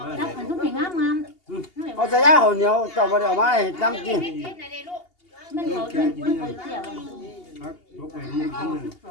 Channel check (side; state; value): right; late; 2.8 ms